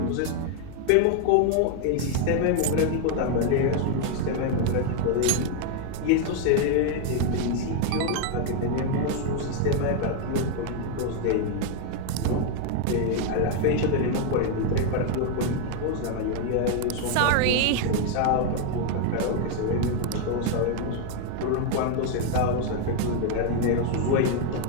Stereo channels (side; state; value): both; different; correlation 0.01